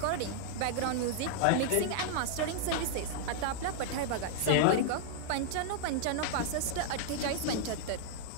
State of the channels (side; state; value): both; different; correlation -0.01